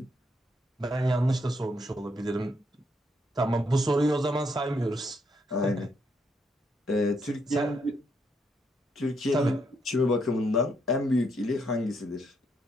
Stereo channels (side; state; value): both; normal; correlation 0.76